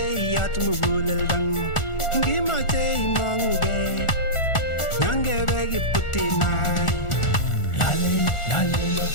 iyat muguleldangu, ngimache imong'ugei, nyangebe kiputinai. Lale,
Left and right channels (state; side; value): late; right; 1.4 ms